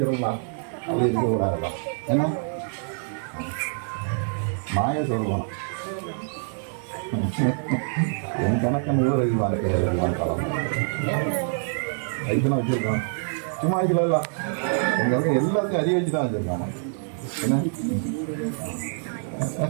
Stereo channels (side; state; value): left; silent; digital silence